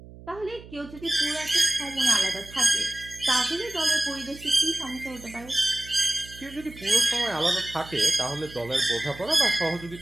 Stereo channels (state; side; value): noise; right; hum, 18 dB below the sound